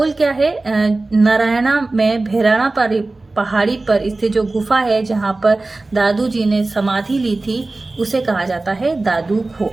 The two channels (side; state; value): left; quieter; 3.2 dB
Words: क्या है? नारायणा में भैराणा पहाड़ी पर स्थित जो गुफा है जहाँ पर दादू जी ने समाधि ली थी उसे कहा जाता है दादू